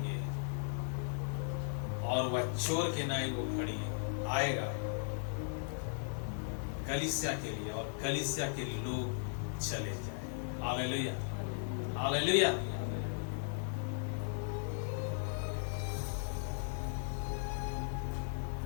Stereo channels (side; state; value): right; silent; 53 dB below the other